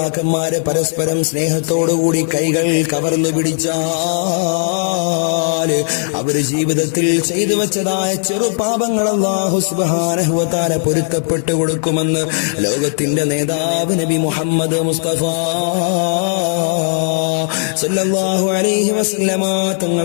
പരസ്പരം സ്നേഹത്തോടുകൂടി കൈകൾ കവർന്നു പിടിച്ചാൽ അവര് ജീവിതത്തിൽ ചെയ്തു വെച്ചതായ ചെറുപാപങ്ങൾ അല്ലാഹു സുബ്ഹാനഹു വ തആല പൊരുത്തപ്പെട്ടു കൊടുക്കുമെന്ന് ലോകത്തിന്റെ നേതാവ് നബി മുഹമ്മദ് മുസ്തഫ സല്ലല്ലാഹു അലൈഹി വസല്ലമ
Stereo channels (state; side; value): silent; right; digital silence